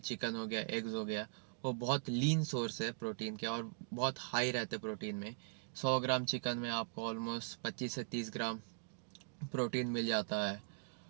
हो गया, एग्स हो गया, वो बहुत लीन सोर्स है प्रोटीन के और बहुत हाई रहते प्रोटीन में। 100 ग्राम चिकन में आपको ऑलमोस्ट 25 से 30 ग्राम प्रोटीन मिल जाता है।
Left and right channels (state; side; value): silent; left; digital silence